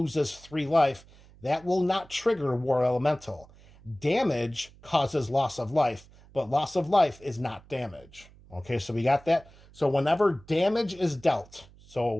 3 life, that will not trigger War Elemental. Damage causes loss of life, but loss of life is not damage. Okay, so we got that. So whenever damage is dealt,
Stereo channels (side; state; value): right; noise; hum, 24 dB below the sound